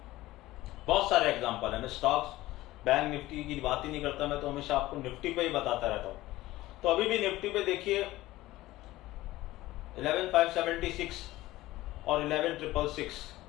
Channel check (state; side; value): quieter; right; 17.1 dB